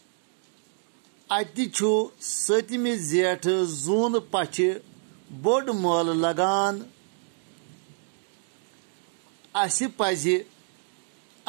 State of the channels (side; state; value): left; silent; digital silence